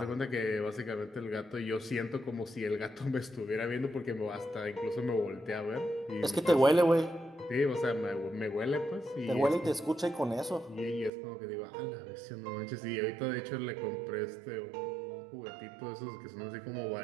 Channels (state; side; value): drops out; left; at 11.1 s